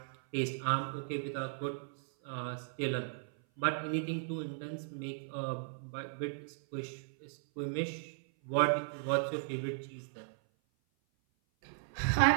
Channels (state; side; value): silent; left; 54 dB below the other